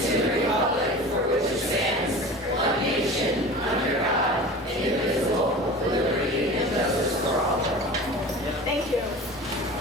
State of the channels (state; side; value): normal; both; correlation 0.36